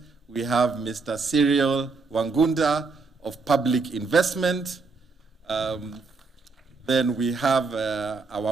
We have Mr. Cyril Wangunda of Public Investment. Then we have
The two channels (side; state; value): left; quieter; 4.2 dB